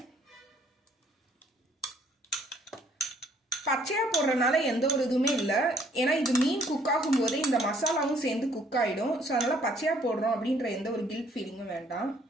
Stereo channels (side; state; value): both; normal; correlation 0.63